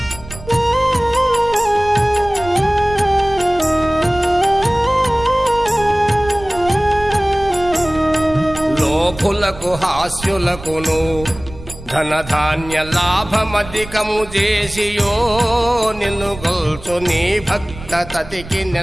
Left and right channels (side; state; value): right; noise; rumble, 15 dB below the sound